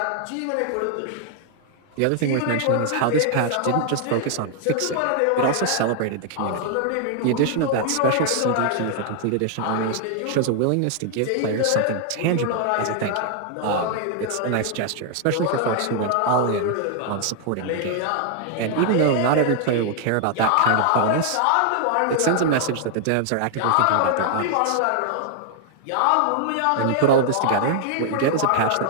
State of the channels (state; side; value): different; both; correlation 0.00